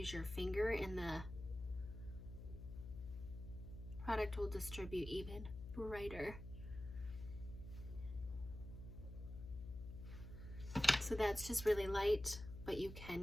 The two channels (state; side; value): noise; left; hum, 10 dB below the sound